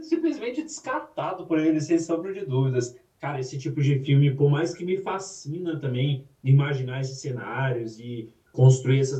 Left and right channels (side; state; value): both; identical; correlation 1.00